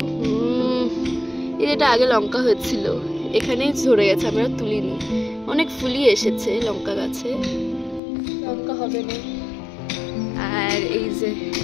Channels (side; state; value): right; drops out; at 8.0 s